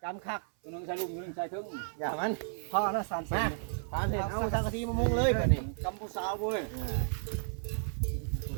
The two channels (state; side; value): silent; left; 56 dB below the other